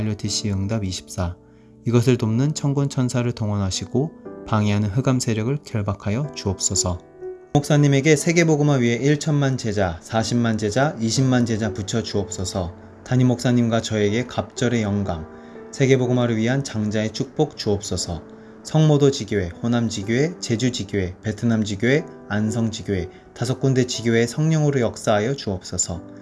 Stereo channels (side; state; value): both; identical; correlation 1.00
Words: 응답 24, 이것을 돕는 천군 천사를 동원하시고 방해하는 흑암 세력을 결박하여 주옵소서. 목사님에게 세계복음화 위에 1천만 제자, 40만 제자, 20만 제자 붙여 주옵소서. 담임 목사님과 저에게 갑절의 영감, 세계복음화를 위한 장자의 축복 주옵소서. 성모도 지교회, 호남 지교회, 제주 지교회, 베트남 지교회, 안성 지교회, 5군데 지교회의 성령으로 역사하여 주옵소서.